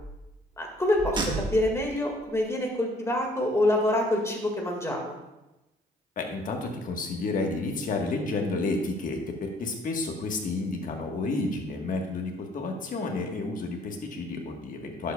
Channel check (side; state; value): both; normal; correlation 0.60